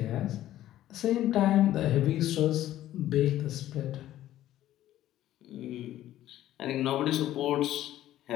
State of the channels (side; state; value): right; quieter; 13.4 dB